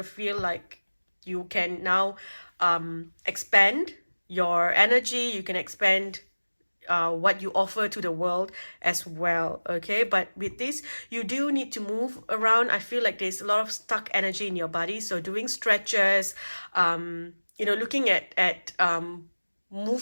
feel like you can now expand your energy. You can expand what you offer to the world as well. Okay, but with this, you do need to move around. I feel like there's a lot of stuck energy in your body, so doing stretches, looking at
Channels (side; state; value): both; inverted; correlation -1.00